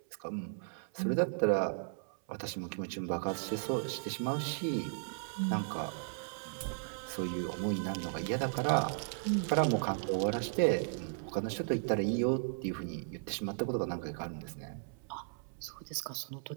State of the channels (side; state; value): left; silent; 54 dB below the other